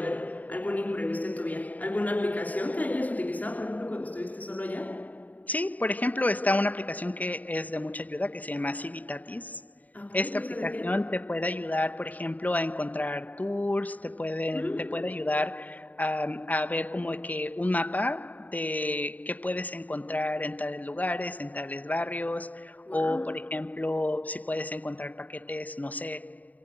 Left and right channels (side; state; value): right; late; 0.076 ms